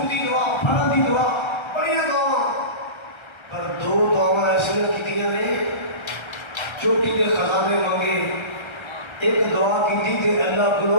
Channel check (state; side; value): late; right; 1.3 ms